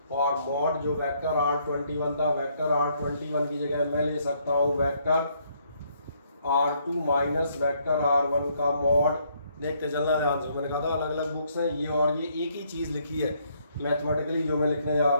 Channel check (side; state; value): both; inverted; correlation -0.70